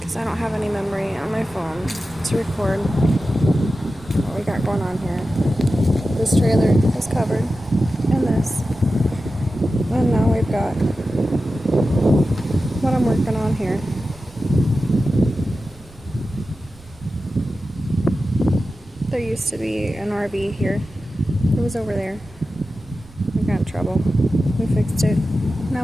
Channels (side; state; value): right; noise; rumble, 23 dB below the sound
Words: I don't have any memory on my phone to record what we got going on here. This trailer is covered in this. And now we've got what I'm working on here. There used to be an RV here. It was over there. We got in trouble. We fixed it. Now